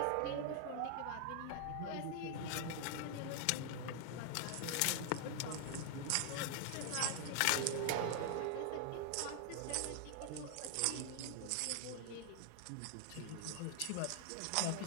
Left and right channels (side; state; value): both; different; correlation 0.00